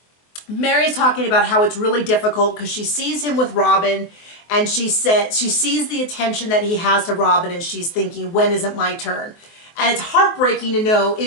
Meri's talking about how it's really difficult because she sees him with Robyn, and she sees the attention that he has to Robyn, and she's thinking, when is it my turn? And it's heartbreaking to know it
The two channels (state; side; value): late; right; 24 ms